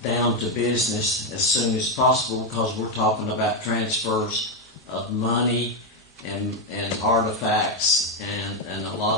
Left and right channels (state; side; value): normal; both; correlation 0.05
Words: down to business as soon as possible, because we're talking about transfers of money and artifacts and a